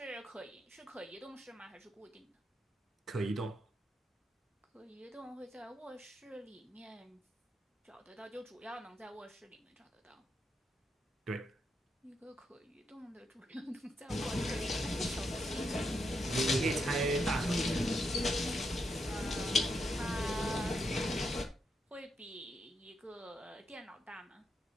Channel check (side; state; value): both; normal; correlation 0.81